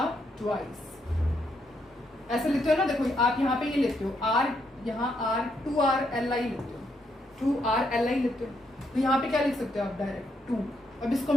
ट्वाइस, ऐसे लेते हो ना, देखो आप यहाँ पे ये लेते हो R, यहाँ R2RLi लेते हो, 2RLi लेते हो। तो यहाँ पे क्या लिख सकते हो आप, डायरेक्ट 2। अब इसको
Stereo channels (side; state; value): both; normal; correlation 0.77